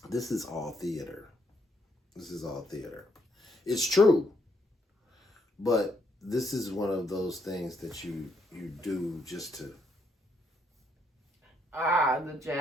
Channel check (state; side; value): normal; both; correlation 0.74